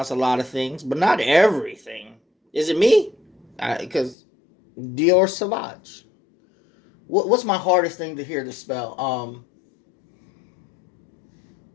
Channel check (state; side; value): drops out; right; at 4.2 s